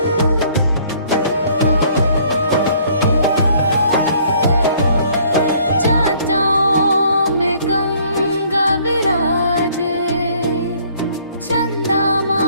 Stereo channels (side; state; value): both; inverted; correlation -0.60